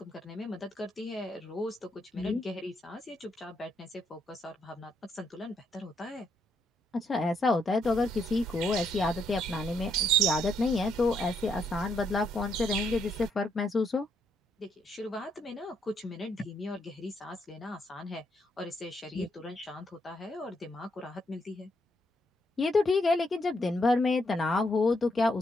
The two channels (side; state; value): both; normal; correlation 0.76